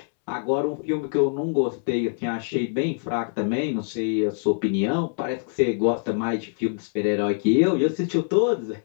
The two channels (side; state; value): right; silent; 62 dB below the other